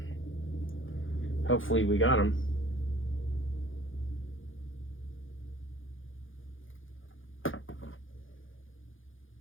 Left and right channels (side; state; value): right; late; 0.58 ms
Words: Hopefully we got them.